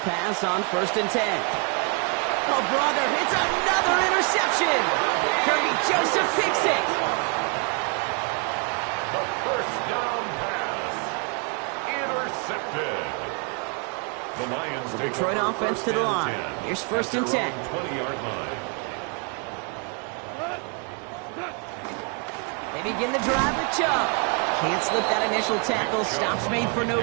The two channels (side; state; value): left; quieter; 37.9 dB